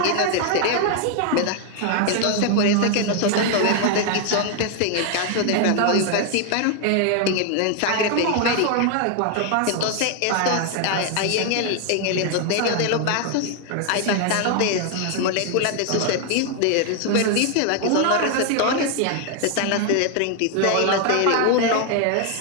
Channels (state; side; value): different; both; correlation 0.00